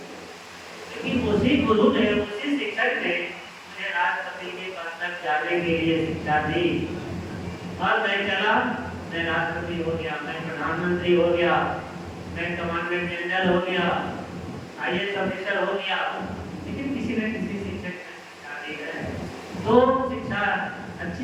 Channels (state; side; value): identical; both; correlation 1.00